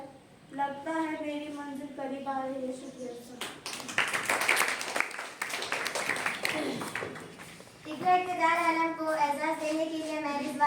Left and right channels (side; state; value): both; identical; correlation 1.00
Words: लगता है मेरी मंजिल करीब आ रही है। शुक्रिया। इकरा इक़्तिदार आलम को एजाज़ देने के लिए मैं